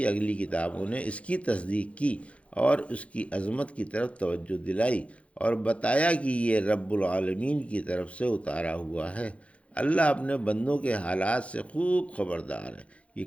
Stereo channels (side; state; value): right; late; 0.063 ms